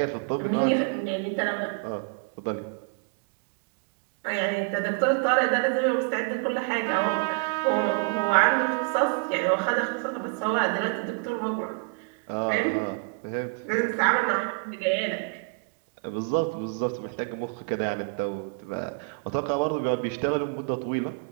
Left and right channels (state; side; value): quieter; left; 33.6 dB